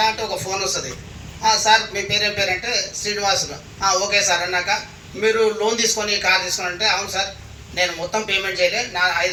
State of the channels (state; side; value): identical; both; correlation 1.00